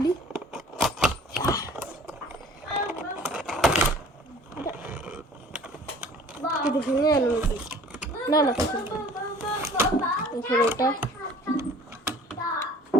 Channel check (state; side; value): normal; both; correlation 0.49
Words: এটা ভেঙে গেল নাকি? না না এখানে এটা